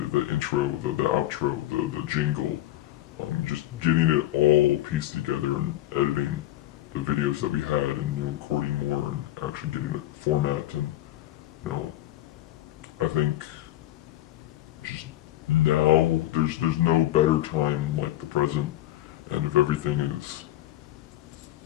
intro, the outro, the jingle, just getting it all pieced together and editing the videos that we had, and recording more and actually getting it format. And I think just now there's no better time like the present, and if everything is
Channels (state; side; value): quieter; right; 14.8 dB